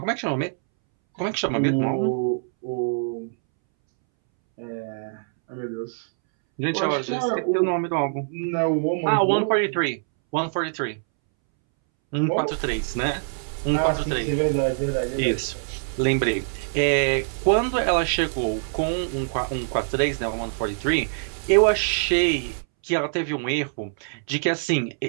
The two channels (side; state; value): left; silent; 62 dB below the other